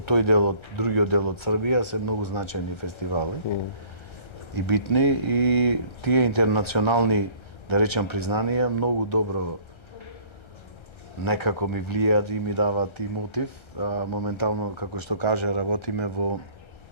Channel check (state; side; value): late; right; 1.3 ms